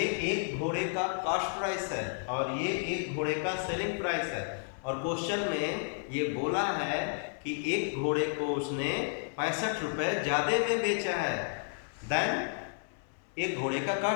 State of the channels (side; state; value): right; silent; 56 dB below the other